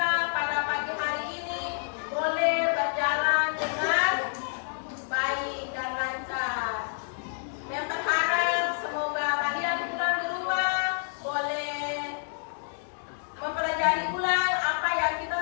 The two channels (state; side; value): silent; right; digital silence